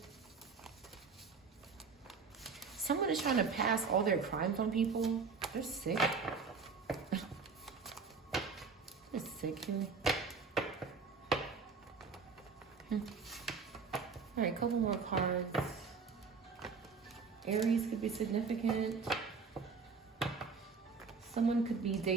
Someone is trying to pass all their crimes on people. They're sick. They're sick here. All right, couple more cards. Aries could be significant. Someone could be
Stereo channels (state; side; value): quieter; left; 5.1 dB